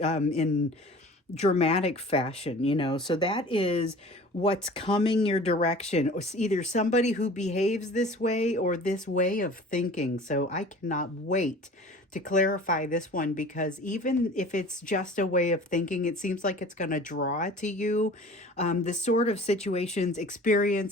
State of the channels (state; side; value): normal; both; correlation 0.43